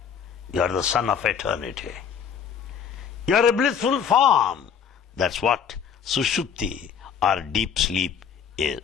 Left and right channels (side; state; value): right; quieter; 7.5 dB